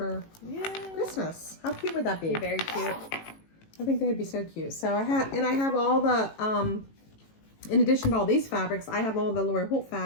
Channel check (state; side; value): late; right; 18 ms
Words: Christmas. How cute would that be? Very cute. I think they'd be so cute. So I have all the in addition to all these fabrics, I have all the Lori Holt